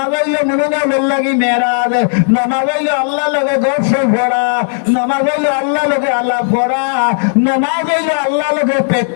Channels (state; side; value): silent; right; 63 dB below the other